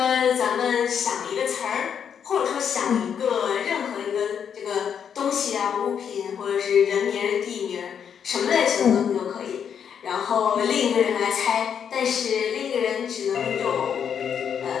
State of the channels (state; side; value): quieter; right; 7.8 dB